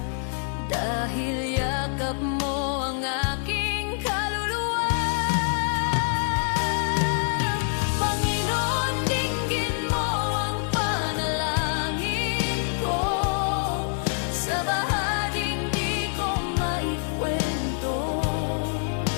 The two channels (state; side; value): silent; right; digital silence